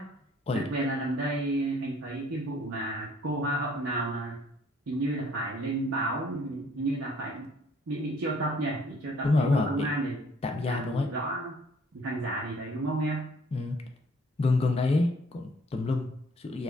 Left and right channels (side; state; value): both; normal; correlation 0.59